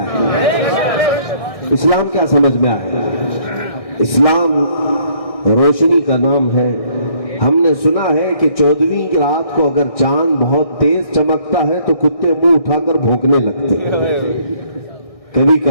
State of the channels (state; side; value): late; right; 1.6 ms